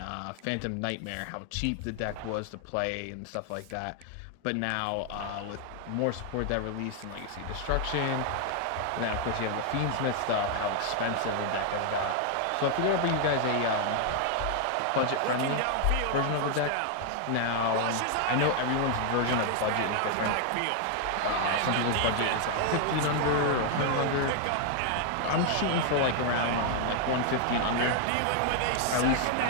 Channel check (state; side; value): different; both; correlation 0.00